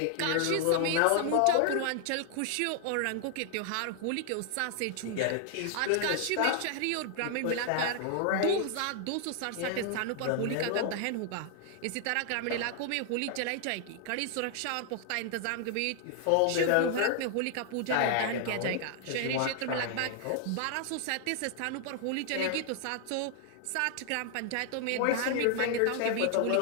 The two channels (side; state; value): both; different; correlation 0.00